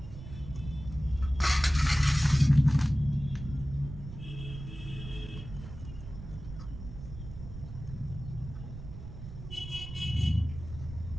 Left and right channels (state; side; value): noise; right; rumble, 11 dB below the sound